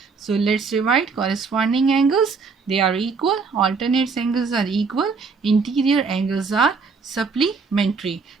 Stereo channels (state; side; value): quieter; left; 4.8 dB